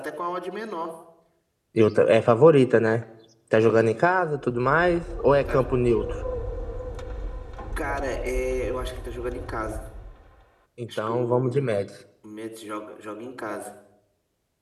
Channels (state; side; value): identical; both; correlation 1.00